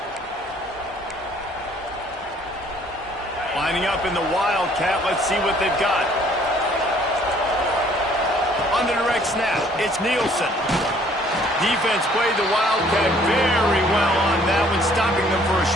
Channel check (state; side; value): normal; both; correlation 0.59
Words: Lining up in the Wildcat, let's see what they've got. On the direct snap, it's Nielsen. Defense played the Wildcat very well on that one, stopping them for a